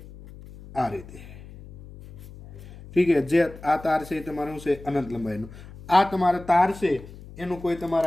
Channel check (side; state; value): left; noise; hum, 17 dB below the sound